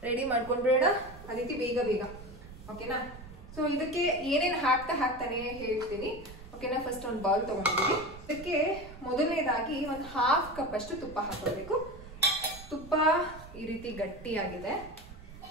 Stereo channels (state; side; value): noise; right; rumble, 16 dB below the sound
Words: ರೆಡಿ ಮಾಡ್ಕೊಂಡ್ಬಿಡೋಣ. ಅದಿತಿ ಬೇಗ ಓಕೆನಾ? ಸೊ ಇದಕ್ಕೆ ಏನೇನು ಹಾಕ್ತಾನೆ ಹೇಳ್ತೀನಿ. ಓಕೆನಾ? ಫಸ್ಟ್ ಒಂದು ಬೌಲ್ ತಗೊಂಡಿದ್ದೀನಿ. ಇದಕ್ಕೆ ಮೊದಲನೇದಾಗಿ ಒಂದು 1/2 ಕಪ್ ಅಷ್ಟು ತುಪ್ಪ ಹಾಕೋಬೇಕು. ತುಪ್ಪ ಈ ರೀತಿ ಗಟ್ಟಿಯಾಗಿದೆ.